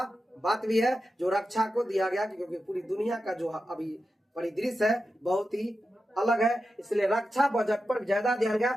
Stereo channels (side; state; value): both; normal; correlation 0.90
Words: बात भी है जो रक्षा को दिया गया, क्योंकि पूरी दुनिया का जो अभी परिदृश्य है बहुत ही अलग है, इसलिए रक्षा बजट पर ज्यादा ध्यान